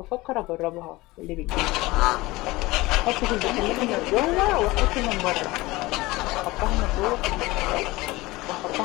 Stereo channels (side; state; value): right; quieter; 20.5 dB